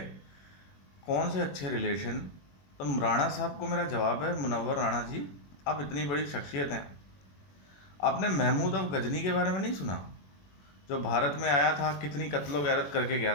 कौन से अच्छे रिलेशन। तो राणा साहब को मेरा जवाब है, मुनव्वर राणा जी, आप इतनी बड़ी शख्सियत हैं, आपने महमूद अफ गजनी के बारे में नहीं सुना? जो भारत में आया था, कितनी कत्लो गैरत करके गया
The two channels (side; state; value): right; late; 21 ms